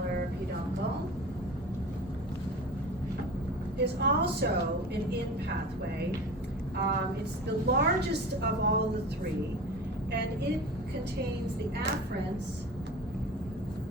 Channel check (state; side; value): normal; both; correlation 0.34